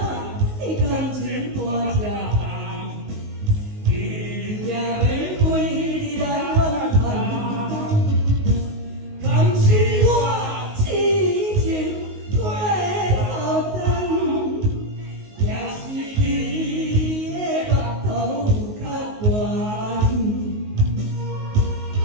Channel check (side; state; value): left; late; 19 ms